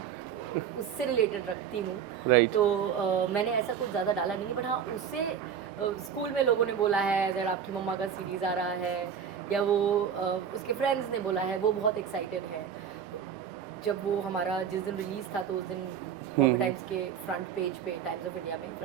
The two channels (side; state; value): left; quieter; 8.0 dB